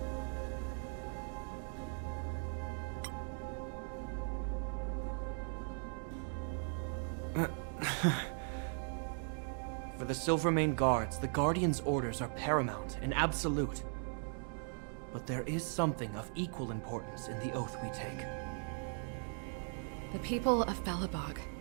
For the Silvermane Guards, the Guardian's orders are paramount and absolute. But there is something of equal importance in the oath we take. The people of Belobog.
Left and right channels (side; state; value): left; silent; 52 dB below the other